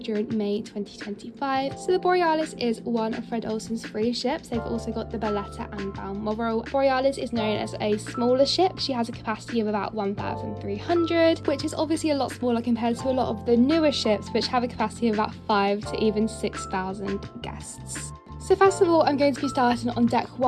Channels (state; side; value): identical; both; correlation 1.00